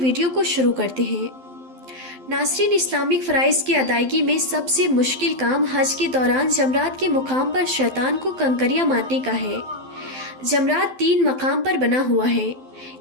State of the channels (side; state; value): left; late; 12 ms